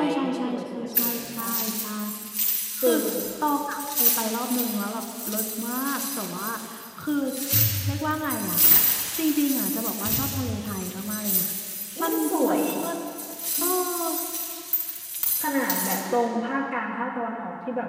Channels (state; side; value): identical; both; correlation 1.00